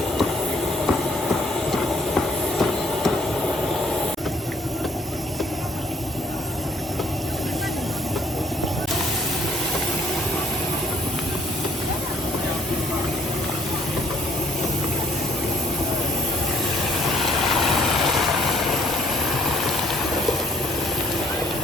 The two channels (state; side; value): normal; both; correlation 0.62